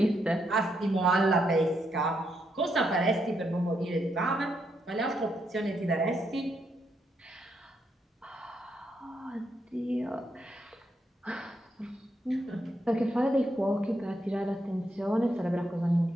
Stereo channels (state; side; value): normal; both; correlation 0.79